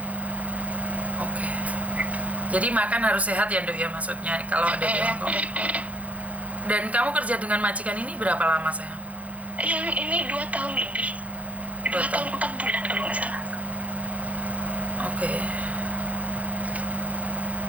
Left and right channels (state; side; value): late; left; 0.067 ms